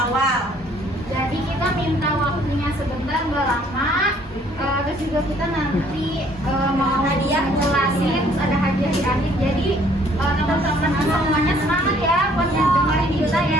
awal. Jadi kita minta waktunya sebentar, nggak lama. Terus juga kita nanti mau hadiah ngelasin, ada hadiah di akhir. Jadi teman-teman semuanya semangat ya buat dengerin kita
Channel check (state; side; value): normal; both; correlation 0.61